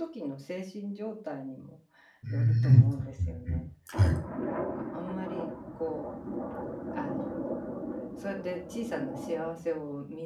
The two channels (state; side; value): identical; both; correlation 1.00